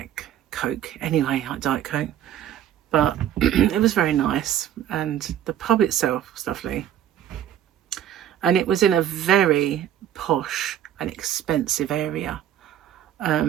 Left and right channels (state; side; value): quieter; left; 10.8 dB